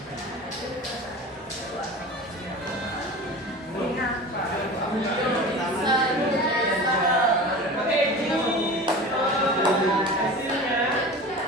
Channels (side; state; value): both; normal; correlation 0.34